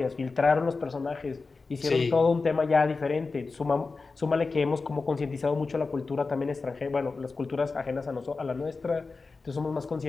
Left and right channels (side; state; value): right; quieter; 4.1 dB